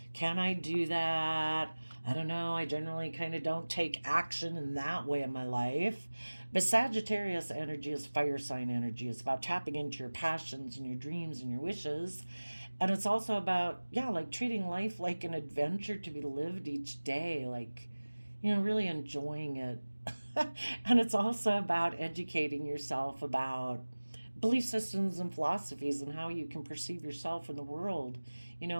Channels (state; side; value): inverted; both; correlation -1.00